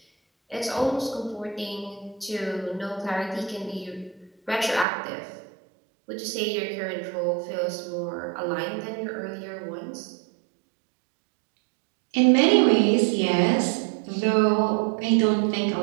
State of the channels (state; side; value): drops out; left; at 4.9 s